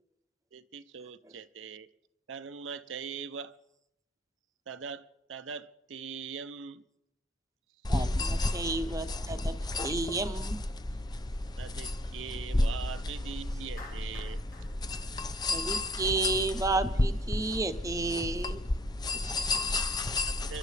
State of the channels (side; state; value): both; normal; correlation 0.61